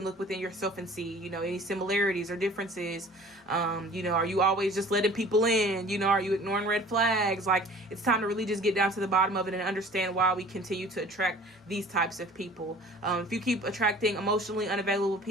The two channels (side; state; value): both; normal; correlation 0.47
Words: look within yourself and see, you know, any similarities or differences? You know, are you always just letting people in? You know, are you ignoring red flags? Like, it's time to really just get down to the bottom of it and understand why we continue to attract these types of people. If you keep attracting emotionally unavailable